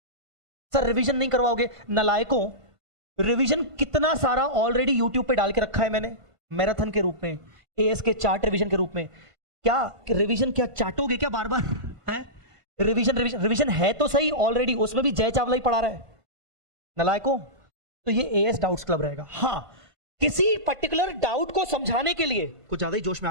सर रिवीजन नहीं करवाओगे? नलायकों, रिवीजन कितना सारा ऑलरेडी यूट्यूब पे डाल के रखा है मैंने, मैराथन के रूप में, AS के चार्ट रिवीजन के रूप में। क्या रिवीजन क्या चाटोगे क्या बार बार है? रिवीजन है तो सही ऑलरेडी, उसमें भी जय चावला ही पढ़ा रहा है नलायकों। तो ये AS डाउट्स क्लब रहेगा। हाँ, किसी पर्टिकुलर डाउट को समझाने के लिए, कुछ ज्यादा ही जोश में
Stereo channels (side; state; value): left; late; 1.5 ms